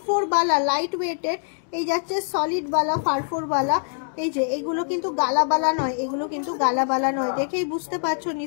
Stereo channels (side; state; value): right; silent; digital silence